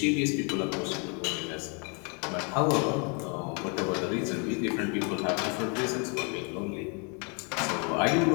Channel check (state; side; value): quieter; right; 35.4 dB